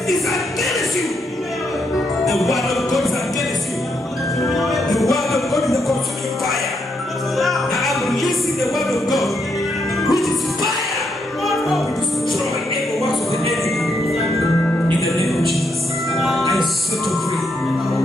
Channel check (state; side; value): normal; both; correlation 0.78